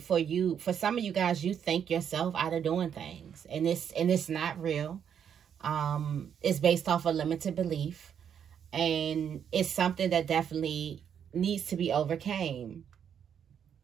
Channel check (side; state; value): left; quieter; 8.3 dB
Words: for you. For some of you guys, you think yourself out of doing things, and it's not real. It's based off a limited belief, and it's something that definitely needs to be overcame.